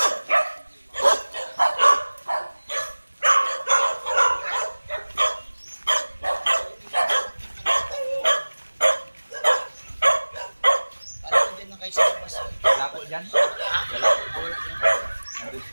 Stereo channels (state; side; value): inverted; both; correlation -1.00